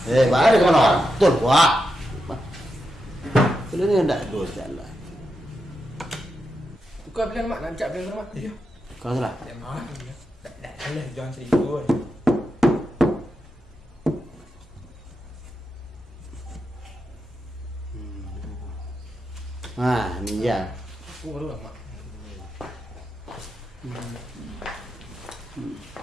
Baru ke mana? Betul wah. Kalau ni tak dos jalan. Tukar bilang mak lancap bilang mak. Ya. Kau salah. Tak mau. Tak salah jangan serius. Ni ya. Aku baru mak.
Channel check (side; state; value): both; normal; correlation 0.87